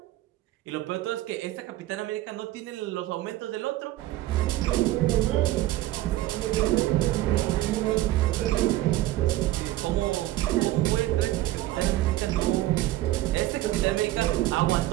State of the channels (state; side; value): quieter; left; 15.6 dB